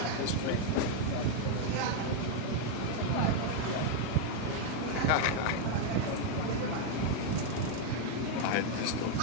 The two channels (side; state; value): both; different; correlation 0.01